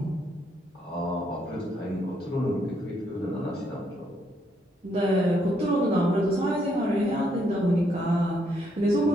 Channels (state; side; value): normal; both; correlation 0.73